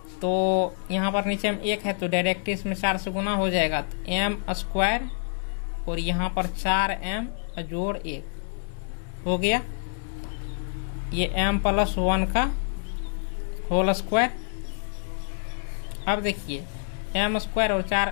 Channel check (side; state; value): right; silent; digital silence